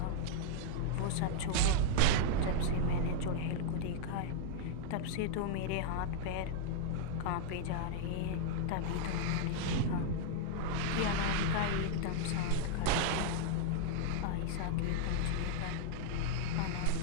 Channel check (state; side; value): different; both; correlation -0.01